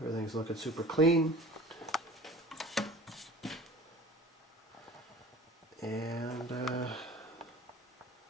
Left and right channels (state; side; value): normal; both; correlation 0.43